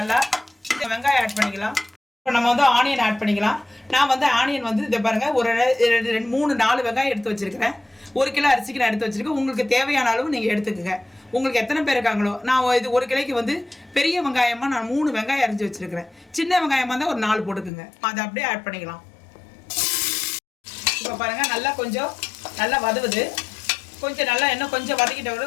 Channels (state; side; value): drops out; right; at 17.7 s